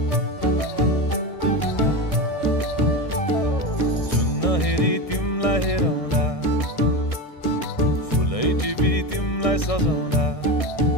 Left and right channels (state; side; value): late; right; 1.6 ms